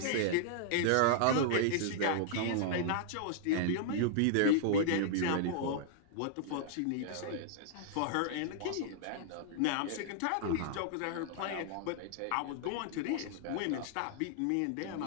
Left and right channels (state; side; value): different; both; correlation -0.01